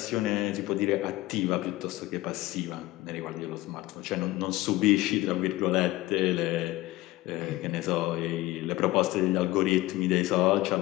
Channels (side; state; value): right; quieter; 18.1 dB